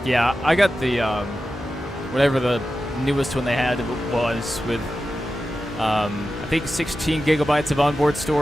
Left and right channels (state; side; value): normal; both; correlation 0.92